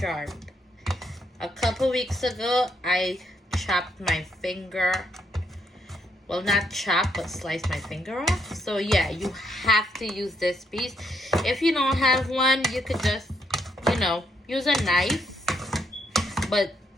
A couple weeks ago, I chopped my finger. Well, not chop, but slice my finger off. So yeah, you have to use this piece. If you don't have one, you could just, use a knife. But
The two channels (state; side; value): normal; both; correlation 0.75